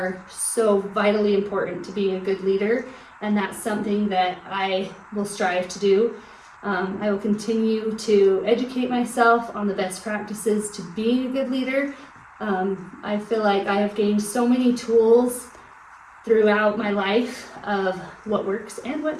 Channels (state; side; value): identical; both; correlation 1.00